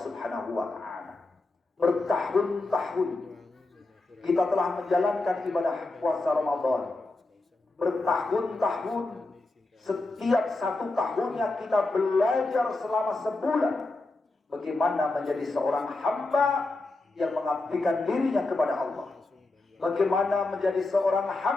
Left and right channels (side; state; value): right; quieter; 3.1 dB